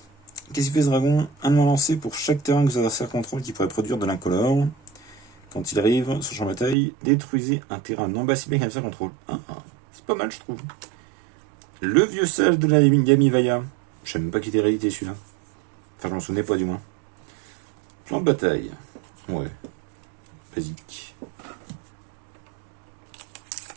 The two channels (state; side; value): drops out; left; at 6.8 s